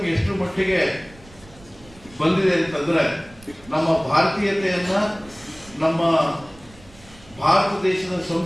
ಎಷ್ಟು ಮಟ್ಟಿಗೆ ಬಂದಿದೆ ಅಂತಂದ್ರೆ, ನಮ್ಮ ಭಾರತೀಯತೆಯನ್ನ, ನಮ್ಮ ಭಾರತ ದೇಶದ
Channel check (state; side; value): noise; right; rumble, 23 dB below the sound